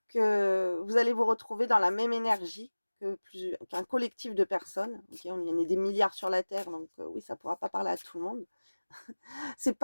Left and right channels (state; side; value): inverted; both; correlation -1.00